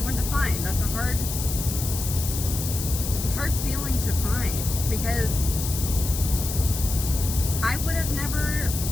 one to find. It's a hard feeling to find, because I would have never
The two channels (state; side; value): noise; left; hiss, 6 dB below the sound